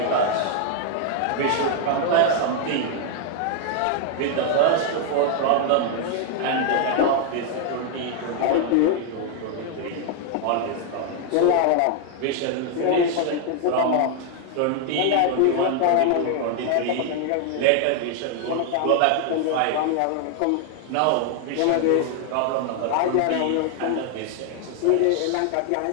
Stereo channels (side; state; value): both; different; correlation 0.00